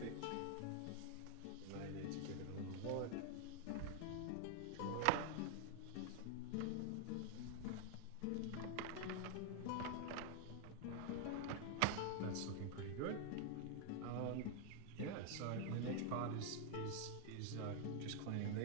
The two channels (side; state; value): both; different; correlation 0.00